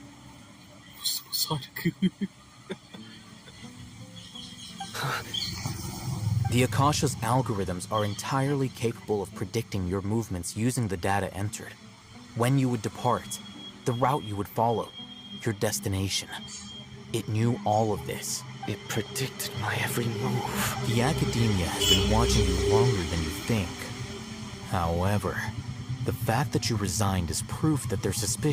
The Akasha's algorithms are entirely capable of predicting your movements using the data entered. When you would depart, the route you would follow, your destination. It knew all of this. It predicted my every move. The academia has been watching you longer than you think. However, the fact that you resigned is proof that their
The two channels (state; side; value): identical; both; correlation 1.00